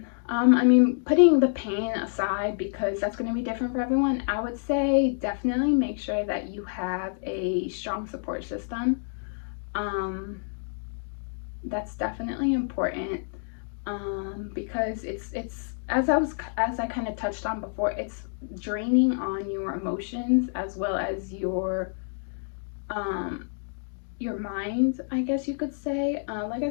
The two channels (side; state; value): right; silent; digital silence